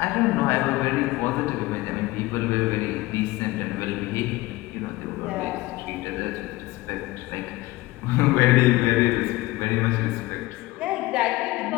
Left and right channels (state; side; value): quieter; right; 19.4 dB